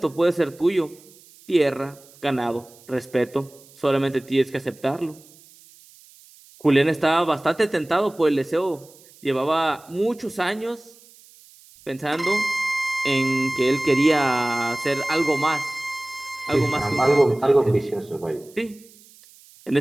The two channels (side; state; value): right; noise; hiss, 25 dB below the sound